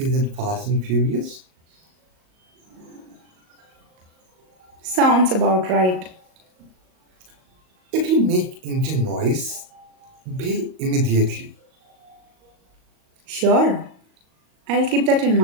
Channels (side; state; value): left; late; 38 ms